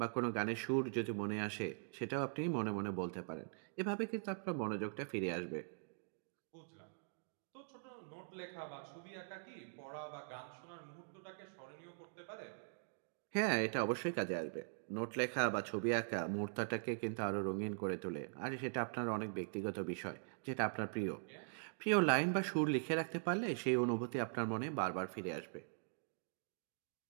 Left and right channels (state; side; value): silent; left; digital silence